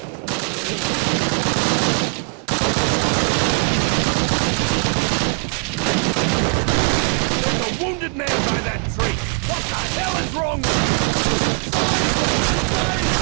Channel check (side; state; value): left; quieter; 36.4 dB